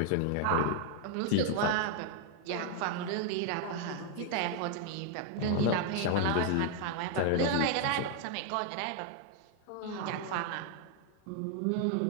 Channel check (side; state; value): both; different; correlation 0.00